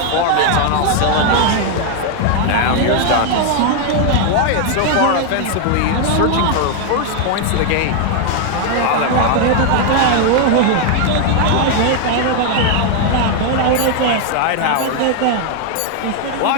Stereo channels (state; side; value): different; both; correlation 0.00